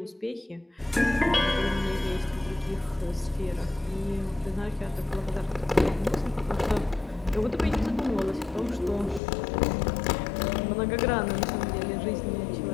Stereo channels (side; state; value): right; drops out; at 9.2 s